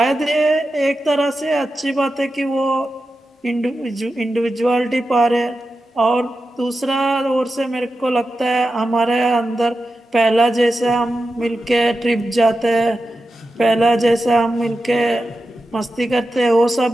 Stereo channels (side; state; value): both; normal; correlation 0.91